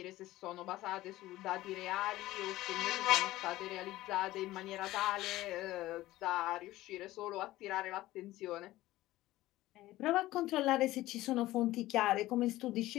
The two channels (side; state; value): right; quieter; 16.5 dB